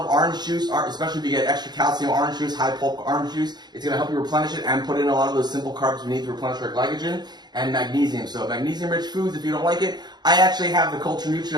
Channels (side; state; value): left; late; 0.20 ms